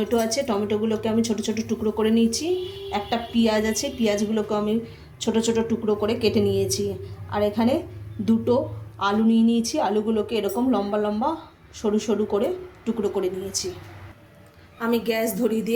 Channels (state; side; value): identical; both; correlation 1.00